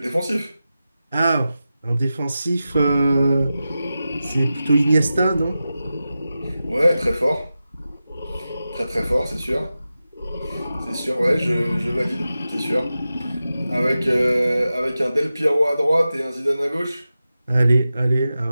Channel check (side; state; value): both; inverted; correlation -0.93